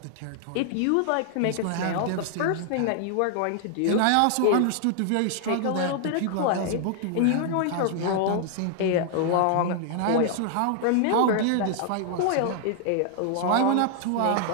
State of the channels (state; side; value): different; both; correlation 0.00